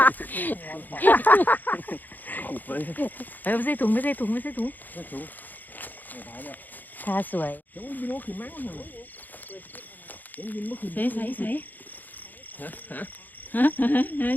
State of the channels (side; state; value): right; late; 0.085 ms